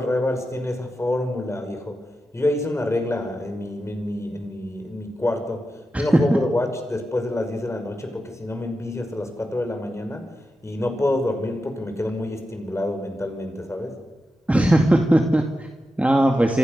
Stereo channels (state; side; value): normal; both; correlation 0.90